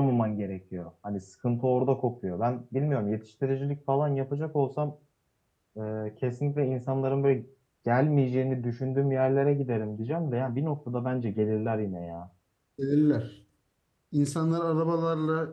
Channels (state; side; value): identical; both; correlation 1.00